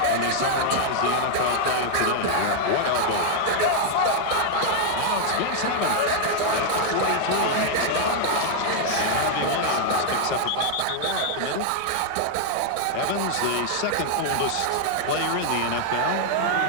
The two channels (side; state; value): both; different; correlation 0.00